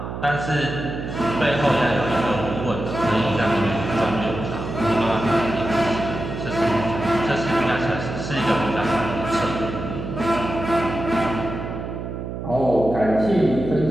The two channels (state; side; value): noise; right; hum, 7 dB below the sound